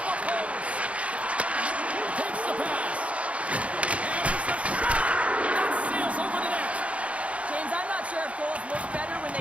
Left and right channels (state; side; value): late; left; 0.063 ms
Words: the post. Takes the pass. And there's a shot. That sails over the net. James, I'm not sure if goals look better when